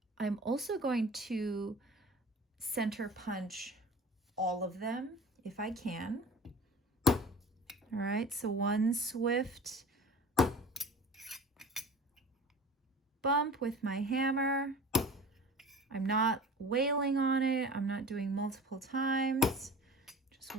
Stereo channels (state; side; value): normal; both; correlation 0.39